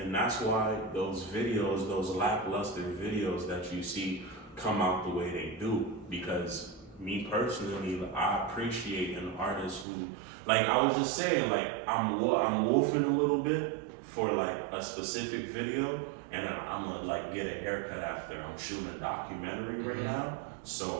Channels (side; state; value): left; drops out; at 9.9 s